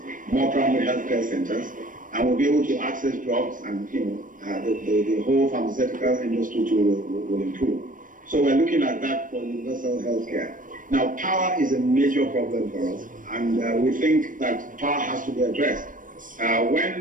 more primary healthcare centers, and we'll be able to access drugs, and the whole pharmaceutical industry too will improve. So we're looking at that for universal healthcare. Now, power is a major problem for us, and we think that power has to be addressed.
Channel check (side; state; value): left; late; 0.39 ms